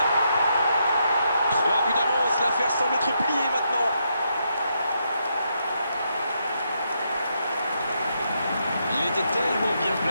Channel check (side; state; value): both; inverted; correlation -0.79